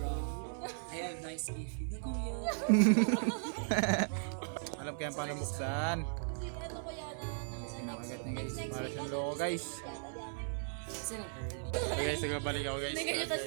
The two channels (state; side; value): silent; left; 53 dB below the other